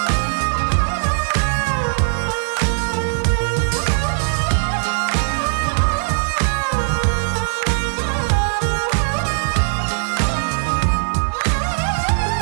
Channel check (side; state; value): left; silent; 66 dB below the other